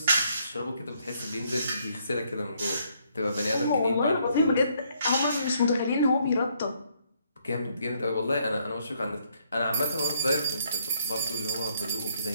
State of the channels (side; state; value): both; inverted; correlation -0.70